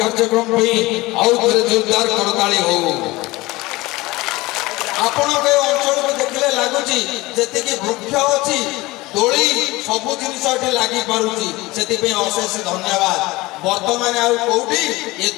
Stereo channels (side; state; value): right; quieter; 20.8 dB